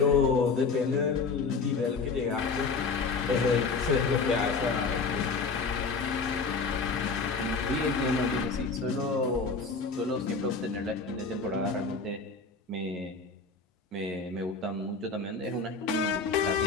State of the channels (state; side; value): quieter; right; 4.4 dB